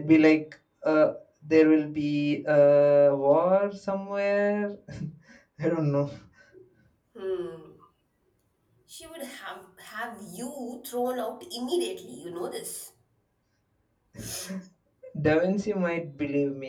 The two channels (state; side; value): identical; both; correlation 1.00